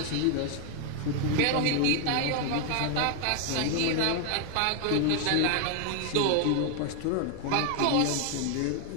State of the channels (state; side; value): different; both; correlation 0.01